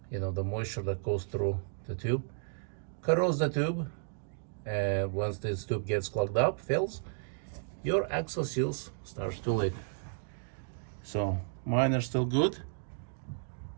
the moisture that goes through the tube corrodes the tube. And once this tube gets clogged up, fills, your axle seals starts to leak. So mine are still good.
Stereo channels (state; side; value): silent; left; digital silence